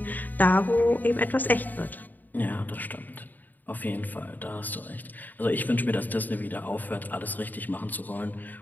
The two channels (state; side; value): late; right; 0.086 ms